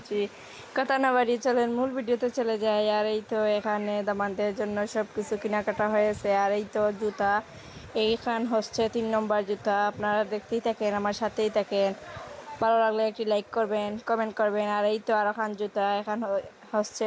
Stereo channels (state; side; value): identical; both; correlation 1.00